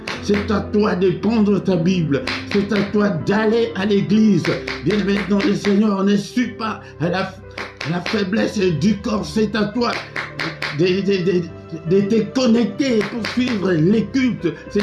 C'est à toi de prendre ta Bible. C'est à toi d'aller à l'église. Bien-aimé dans le Seigneur, ne suis pas à la faiblesse du corps. C'est à toi de te connecter pour suivre les cultes.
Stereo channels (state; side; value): identical; both; correlation 1.00